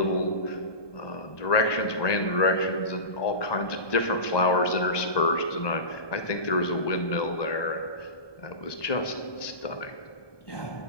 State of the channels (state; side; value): late; right; 1.2 ms